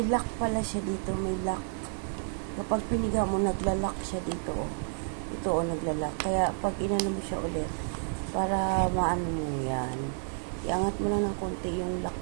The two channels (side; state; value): left; silent; 58 dB below the other